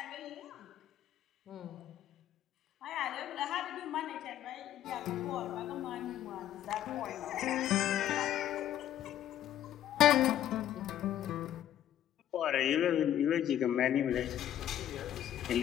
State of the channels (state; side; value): quieter; right; 11.5 dB